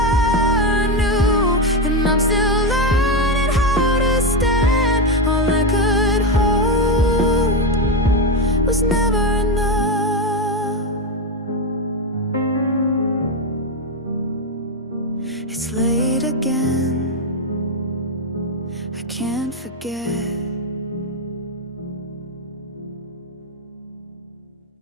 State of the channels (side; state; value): both; normal; correlation 0.09